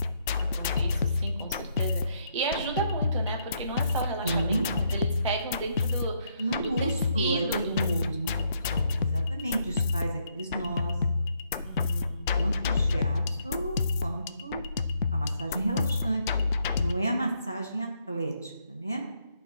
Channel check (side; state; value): both; inverted; correlation -0.73